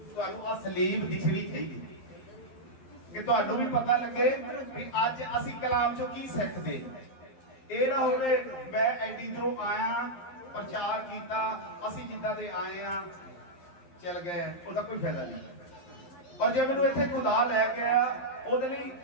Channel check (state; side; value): late; right; 12 ms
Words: ਤੁਹਾਨੂੰ ਆ ਸਲੀਬ ਦਿਖਣੀ ਚਾਹੀਦੀ ਕਿ ਤੁਹਾਨੂੰ ਵੀ ਪਤਾ ਲੱਗੇ ਵੀ ਅੱਜ ਅਸੀਂ ਕਲਾਮ ਚੋਂ ਕੀ ਸਿੱਖਦੇ। ਇਹ ਨਾ ਹੋਵੇ ਮੈਂ ਐਡੀ ਦੂਰੋਂ ਆਇਆ, ਪ੍ਰਚਾਰ ਕੀਤਾ, ਅਸੀਂ ਜਿੱਦਾਂ ਦੇ ਆਏ ਆ ਚਲ ਗਏ, ਉਹਦਾ ਕੋਈ ਫਾਇਦਾ ਨਹੀਂ। ਔਰ ਜੇ ਮੈਨੂੰ ਇੱਥੇ ਖੁਦਾ ਲੈ ਕੇ ਆਇਆ, ਉਹਦੇ ਲਈ